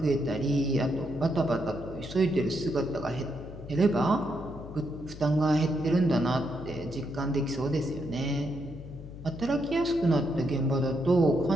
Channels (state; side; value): noise; left; hum, 13 dB below the sound